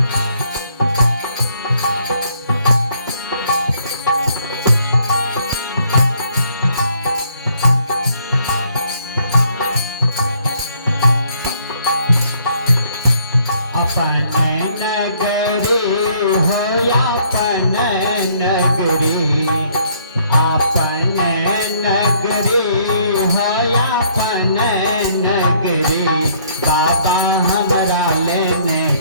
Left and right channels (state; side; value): inverted; both; correlation -0.65